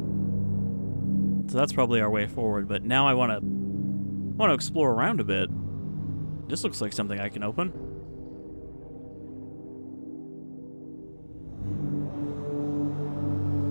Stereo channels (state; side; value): inverted; both; correlation -1.00